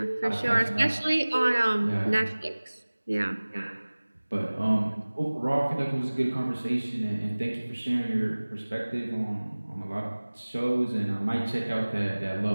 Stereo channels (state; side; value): inverted; both; correlation -1.00